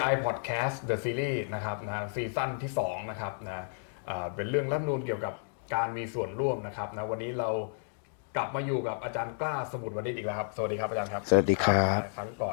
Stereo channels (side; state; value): right; silent; digital silence